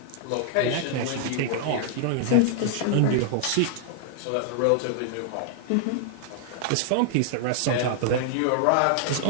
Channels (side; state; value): both; different; correlation -0.01